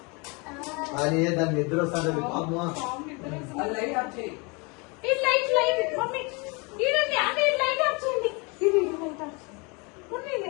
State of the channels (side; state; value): right; quieter; 29.6 dB